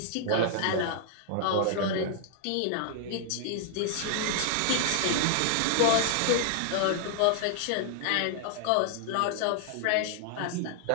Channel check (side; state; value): both; different; correlation -0.01